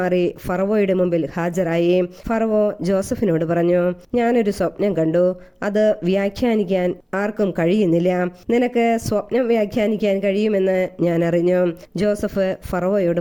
ഫറവോയുടെ മുമ്പിൽ ഹാജരായി. ഫറവോ ജോസഫിനോട് പറഞ്ഞു, ഞാനൊരു സ്വപ്നം കണ്ടു. അത് വ്യാഖ്യാനിക്കാൻ ആർക്കും കഴിയുന്നില്ല. നിനക്ക് സ്വപ്നം വ്യാഖ്യാനിക്കാൻ കഴിയുമെന്ന് ഞാൻ അറിഞ്ഞു. ജോസഫ് ഫറവോയോട്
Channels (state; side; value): identical; both; correlation 1.00